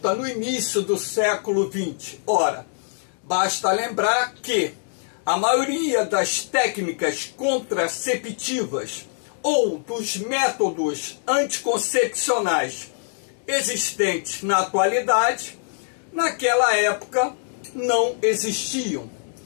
no início do século XX? Ora, basta lembrar que a maioria das técnicas contraceptivas ou dos métodos anticoncepcionais existentes na atualidade, naquela época não existiam.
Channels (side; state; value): right; silent; digital silence